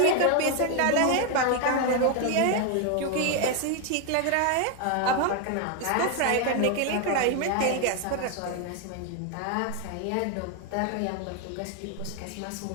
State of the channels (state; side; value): different; both; correlation 0.01